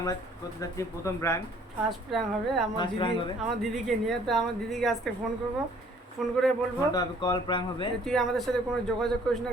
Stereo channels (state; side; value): normal; both; correlation 0.58